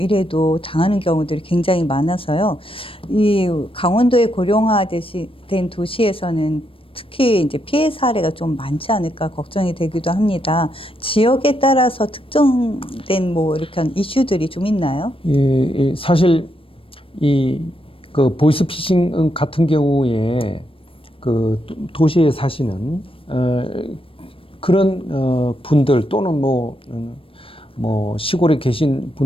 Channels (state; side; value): late; right; 0.26 ms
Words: 당하는 경우들이 굉장히 많아서요. 이 강원도의 고령화된 도시에서는 특히 이제 피해 사례가 좀 많지 않을까 걱정이 되기도 합니다. 지역에 따라서 특정된 뭐 이렇게 이슈들이 좀 있나요? 사실 그 보이스피싱 같은 경우에 그 도시에 사시는 그런 분들 또는 뭐 시골에 계신